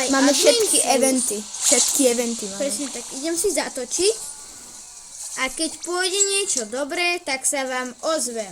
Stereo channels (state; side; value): identical; both; correlation 1.00